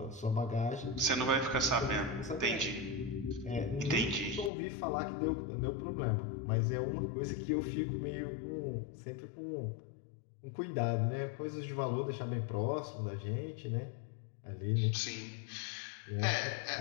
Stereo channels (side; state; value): right; drops out; at 4.5 s